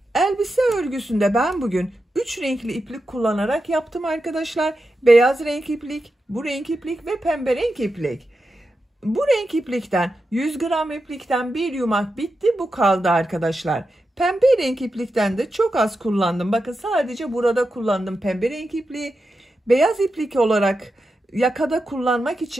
Elbise örgüsünde ben bugün 3 renkli iplik kullanarak yaptım arkadaşlar. Beyaz renk iplik, bu renk iplik ve pembe renk iplik. Bu renk iplikten 100 gram iplikten bir yumak bitti, bu kaldı arkadaşlar. Pembe renk iplikten de çok az kullandım. Bakın sadece burada kullandım pembe renk ipliği. Beyaz iplik olarak yakada kullanmak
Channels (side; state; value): both; normal; correlation 0.89